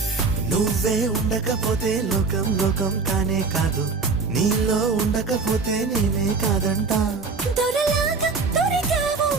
నువ్వే ఉండకపోతే లోకం లోకం కానే కాదు, నీలో ఉండకపోతే నేనే కాదంట. దొరలాగా దొరికావు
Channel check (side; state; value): left; quieter; 4.5 dB